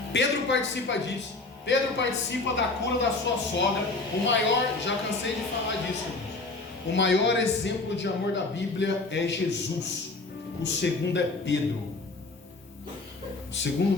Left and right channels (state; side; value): quieter; right; 3.4 dB